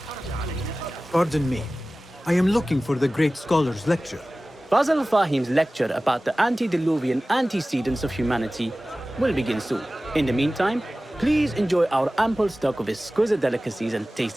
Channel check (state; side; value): normal; both; correlation 0.97